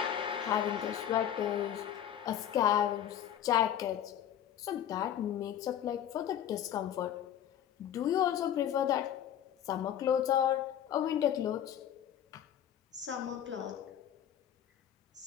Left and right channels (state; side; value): quieter; right; 10.3 dB